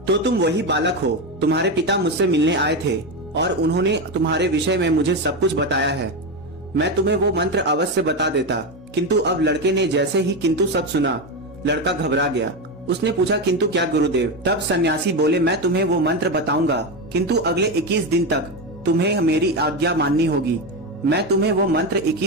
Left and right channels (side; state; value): both; normal; correlation 0.13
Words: तो तुम वही बालक हो। तुम्हारे पिता मुझसे मिलने आए थे और उन्होंने तुम्हारे विषय में मुझे सब कुछ बताया है। मैं तुम्हें वो मंत्र अवश्य बता देता, किंतु अब लड़के ने जैसे ही किंतु सब सुना, लड़का घबरा गया। उसने पूछा, किंतु क्या गुरुदेव? तब सन्यासी बोले, मैं तुम्हें वो मंत्र बताऊंगा, किंतु अगले 21 दिन तक तुम्हें मेरी आज्ञा माननी होगी। मैं तुम्हें वो मंत्र